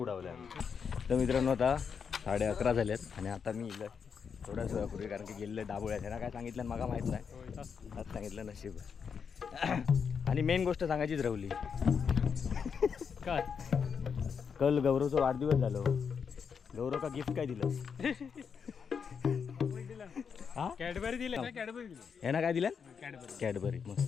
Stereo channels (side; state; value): right; quieter; 6.5 dB